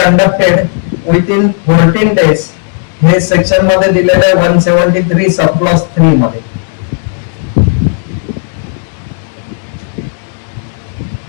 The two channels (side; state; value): right; silent; digital silence